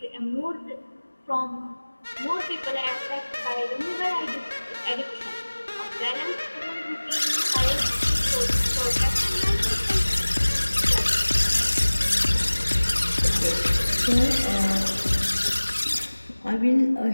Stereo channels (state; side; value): inverted; both; correlation -1.00